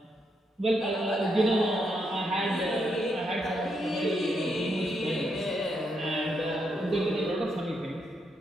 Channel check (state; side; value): normal; both; correlation 0.79